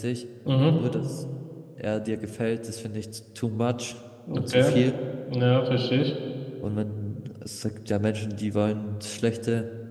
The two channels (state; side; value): identical; both; correlation 1.00